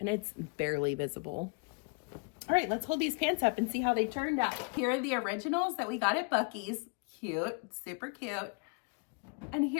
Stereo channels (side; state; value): right; quieter; 33.2 dB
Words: it's barely visible. All right, let's hold these pants up and see how they turned out. Here are the originals that we got at Buc-ee's. Cute, super cute. And